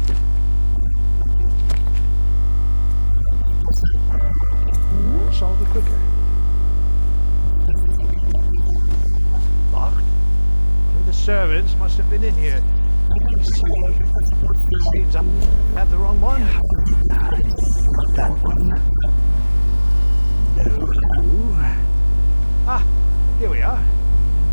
Aha, ok. Aha, deci poți să. Aha, ok. Stai, că e da chestia ăla în pana mea. Cred că o să pot să... Ca în Hitman, ceva de genul, adică am otrăvit băutura aia.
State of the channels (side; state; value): both; inverted; correlation -1.00